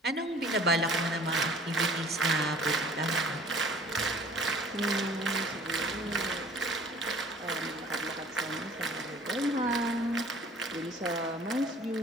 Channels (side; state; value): both; normal; correlation 0.50